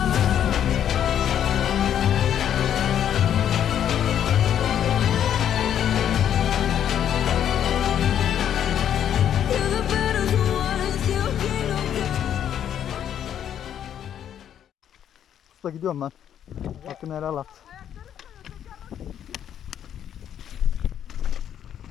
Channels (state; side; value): quieter; right; 9.7 dB